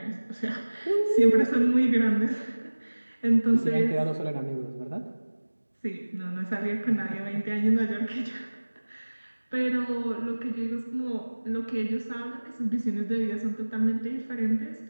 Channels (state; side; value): inverted; both; correlation -1.00